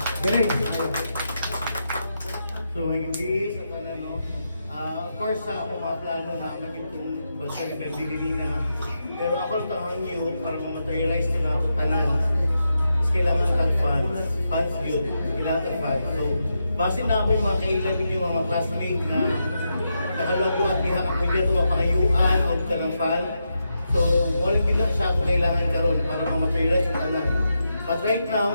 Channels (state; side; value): inverted; both; correlation -0.85